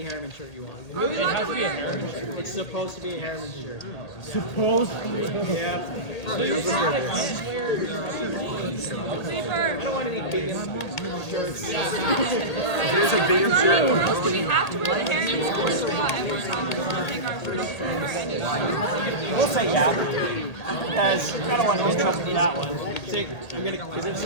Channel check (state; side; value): late; right; 1.8 ms